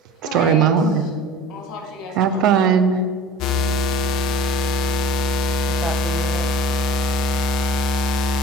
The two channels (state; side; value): normal; both; correlation 0.42